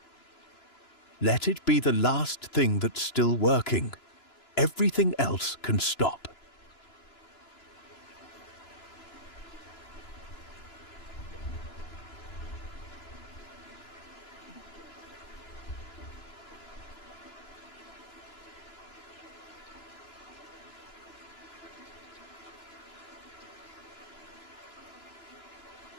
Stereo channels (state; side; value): late; right; 2.9 ms